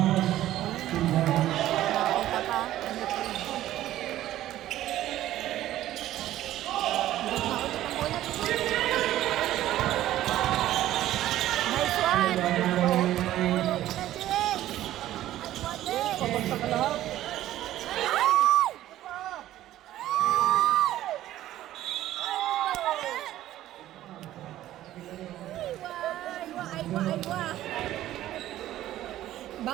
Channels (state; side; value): quieter; left; 13.7 dB